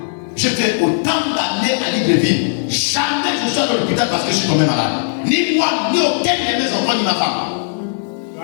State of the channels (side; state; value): right; silent; 62 dB below the other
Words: J'ai fait autant d'années à Libreville. Jamais je suis à l'hôpital parce que je suis tombé malade. Ni moi, ni aucun de mes enfants, ni ma femme.